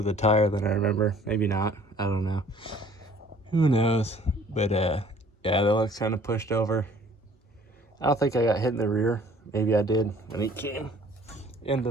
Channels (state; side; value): normal; both; correlation 0.55